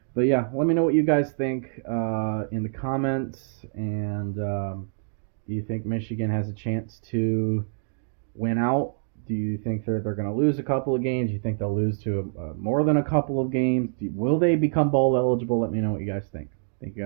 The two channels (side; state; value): left; silent; digital silence